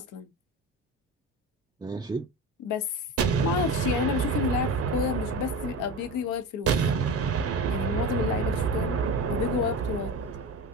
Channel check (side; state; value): both; normal; correlation 0.26